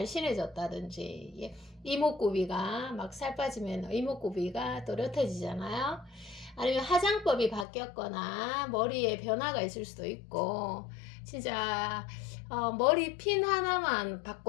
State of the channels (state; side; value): drops out; right; at 7.7 s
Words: 이목구비가 막 살 빠지면 이목구비가 또렷해지잖아요. 아니면 화장법이 바뀌었거나 머리에 변화가 있을 수도 있고, 진짜 머리 핀 하나만